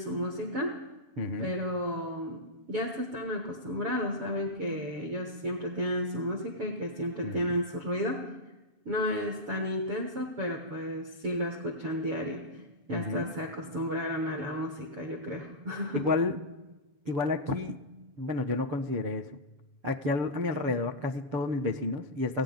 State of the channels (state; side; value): late; left; 7.2 ms